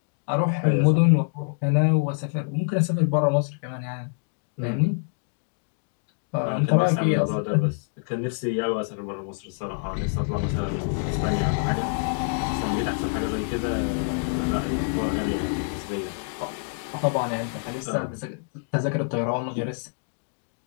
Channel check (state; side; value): silent; right; digital silence